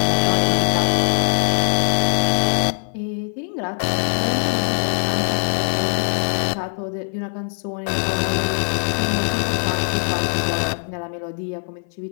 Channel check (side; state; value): right; silent; 57 dB below the other